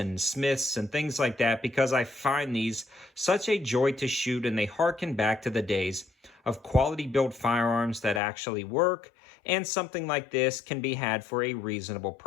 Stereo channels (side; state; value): right; drops out; at 8.2 s